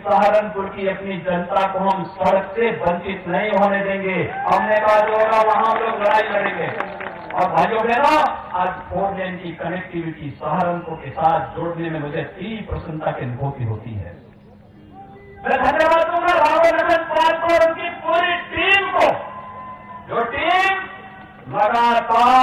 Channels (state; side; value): identical; both; correlation 1.00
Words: सहारनपुर की अपनी जनता को हम सड़क से वंचित नहीं होने देंगे। हमने कहा जो होगा वहां हम लोग लड़ाई लड़ेंगे। और भाइयों बहनों, आज 4 लेन की कनेक्टिविटी सहारनपुर के साथ जोड़ने में मुझे तीव्र प्रसन्नता की अनुभूति होती है। मैं धन्यवाद दूंगा राघव नंदन पाल को और उनकी पूरी टीम को, जो टीम